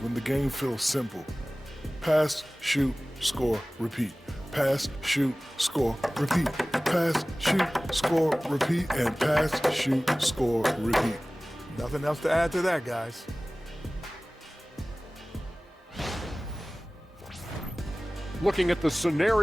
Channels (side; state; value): both; normal; correlation 0.98